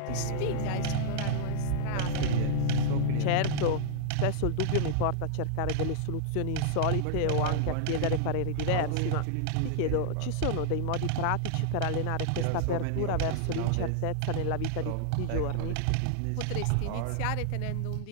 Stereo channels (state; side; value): different; both; correlation -0.01